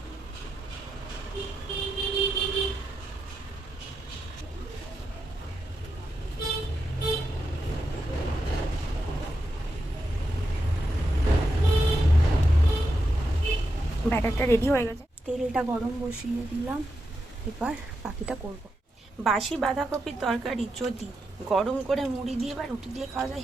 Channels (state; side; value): normal; both; correlation 0.86